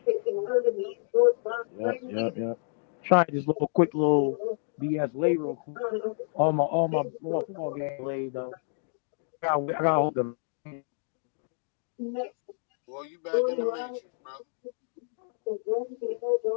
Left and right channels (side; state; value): right; silent; digital silence